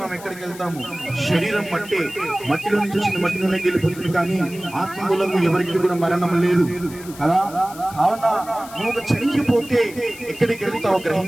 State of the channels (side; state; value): left; noise; hiss, 18 dB below the sound